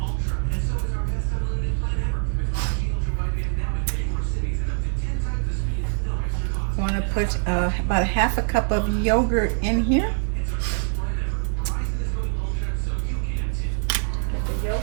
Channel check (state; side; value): silent; left; 60 dB below the other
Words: want to put about a half a cup of yogurt in here. Put the